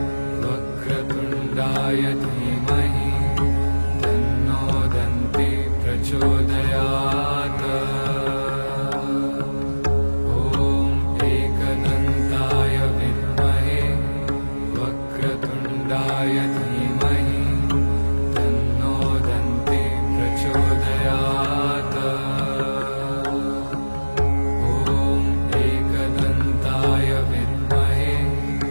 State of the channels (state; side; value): inverted; both; correlation -1.00